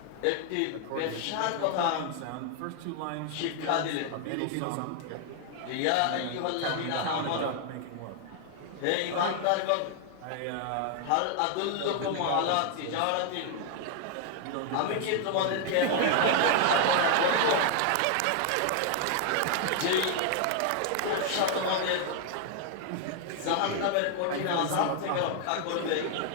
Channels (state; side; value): different; both; correlation 0.00